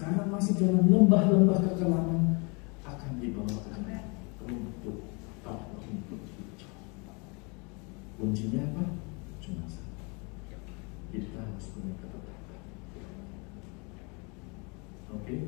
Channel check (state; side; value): quieter; right; 31.5 dB